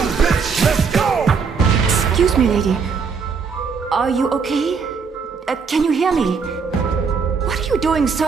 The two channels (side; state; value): left; quieter; 5.6 dB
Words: bitch? Let's go. Excuse me, lady. Are you okay? Can you hear me? What are you doing,